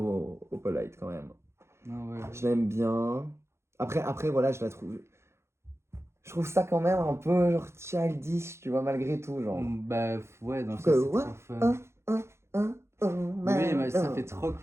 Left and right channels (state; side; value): late; left; 0.13 ms